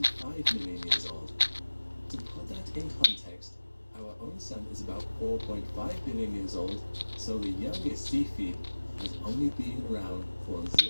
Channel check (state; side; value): inverted; both; correlation -1.00